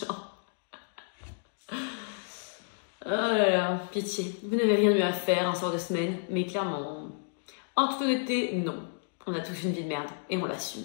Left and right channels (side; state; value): right; silent; digital silence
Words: Oh là là, pitié. Vous n'avez rien de mieux à faire un soir de semaine, mais clairement, en toute honnêteté, non. On a tous une vie de merde, et on l'assume.